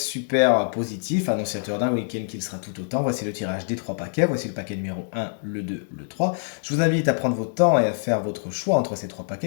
positif, annonciateur d'un week-end qui le sera tout autant. Voici le tirage des trois paquets, voici le paquet numéro 1, le 2, le 3. Je vous invite à prendre votre temps et à faire votre choix entre ces trois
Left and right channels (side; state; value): right; silent; digital silence